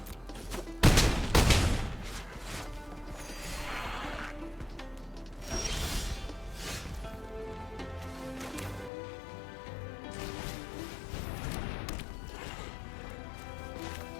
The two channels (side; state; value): right; drops out; at 8.9 s